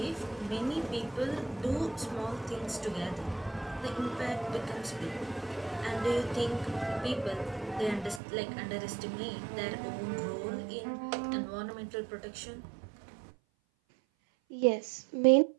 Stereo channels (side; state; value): left; drops out; at 8.2 s